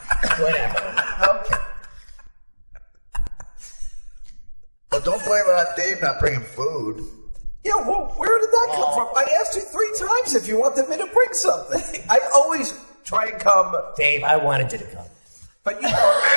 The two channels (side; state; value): both; inverted; correlation -1.00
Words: Whatever. Okay. Well, don't blame it on Dave not bringing food. Yeah, well, where did that come from? I asked you 3 times if you wanted me to bring something. I always try and come, Dave, I wanted you to come. but you know...